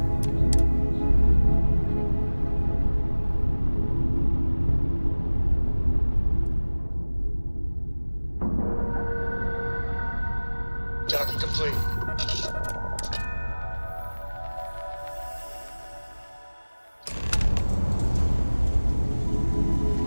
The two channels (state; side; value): inverted; both; correlation -1.00